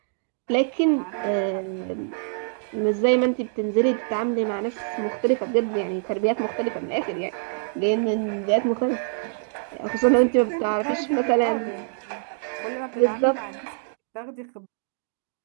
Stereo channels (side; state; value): left; silent; digital silence